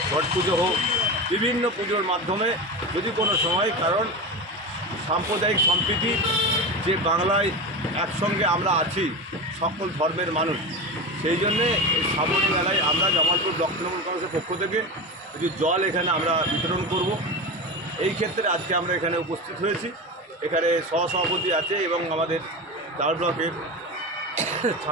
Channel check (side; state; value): both; normal; correlation 0.23